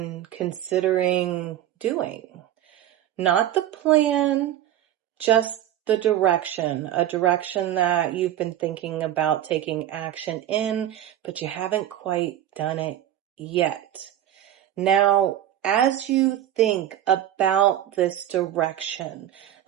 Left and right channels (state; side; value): quieter; left; 12.0 dB